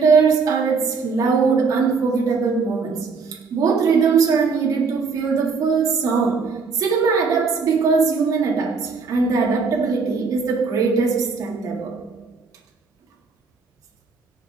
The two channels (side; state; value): left; quieter; 4.9 dB